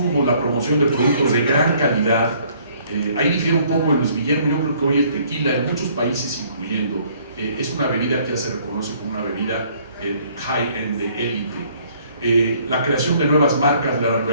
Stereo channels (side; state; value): both; inverted; correlation -0.61